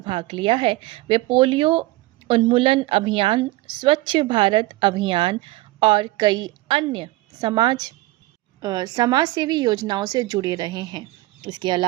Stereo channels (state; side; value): quieter; left; 19.2 dB